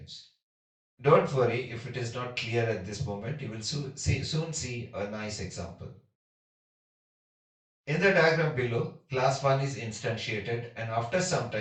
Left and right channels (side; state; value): both; identical; correlation 1.00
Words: Don't worry if it is not clear at this moment, you will soon see a nice example. In the diagram below, class 1 is instantiated and after some